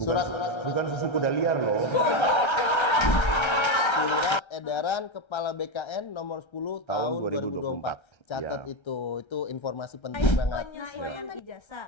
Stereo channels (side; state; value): right; late; 1.3 ms